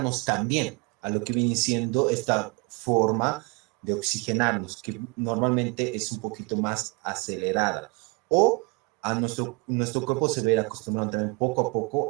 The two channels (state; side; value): quieter; left; 30.6 dB